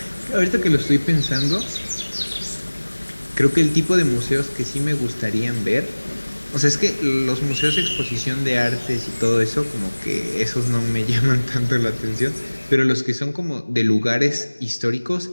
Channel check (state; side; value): inverted; both; correlation -1.00